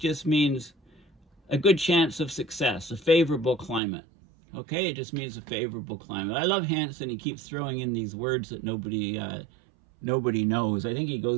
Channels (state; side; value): drops out; left; at 3.8 s